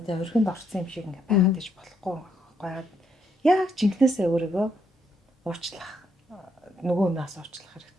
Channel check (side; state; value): both; normal; correlation 0.74